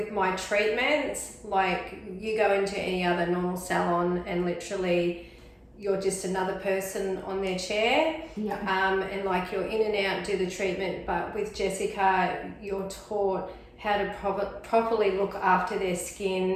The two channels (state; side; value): identical; both; correlation 1.00